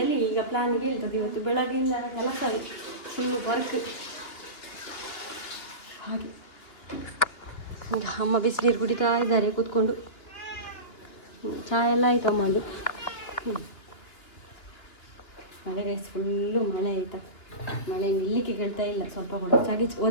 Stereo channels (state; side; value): late; right; 2.8 ms